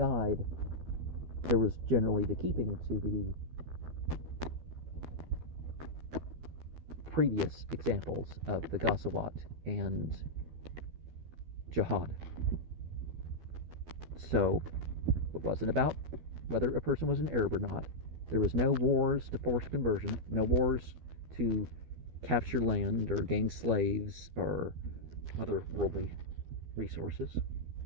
there was generally the keeping to the previous examples of the Ghazawat and jihad. So, it wasn't about whether a person was an Arab or not. There was no wars to force conversion, no wars to capture land or gain slaves or other worldly resources.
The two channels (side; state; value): left; late; 12 ms